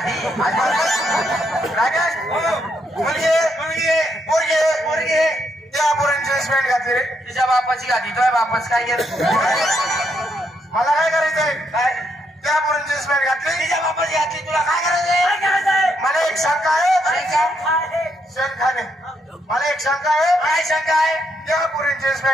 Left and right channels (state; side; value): normal; both; correlation 0.77